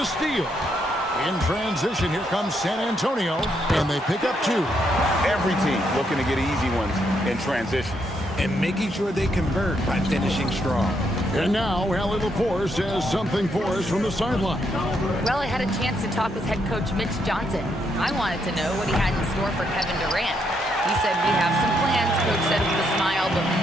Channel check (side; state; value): both; normal; correlation 0.77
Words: steal. In transition, here comes San Antonio, and they pick up 2. Every team looking to get easy ones in transition. And making sure they convert by finishing strong. And now, Allie LaForce has something for us from the sideline. Well, I had a chance to talk with head coach Mitch Johnson. I wanted to know what he had in store for Kevin Durant. He said, we have some plans, Coach said with a smile, but